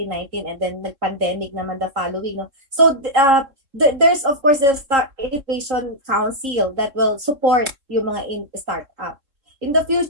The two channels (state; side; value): late; left; 3.7 ms